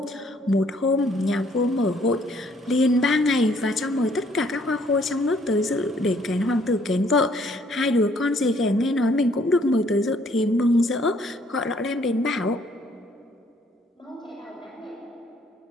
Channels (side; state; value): both; normal; correlation 0.64